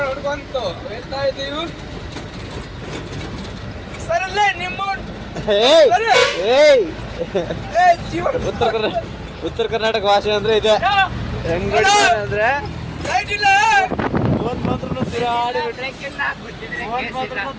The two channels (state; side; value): identical; both; correlation 1.00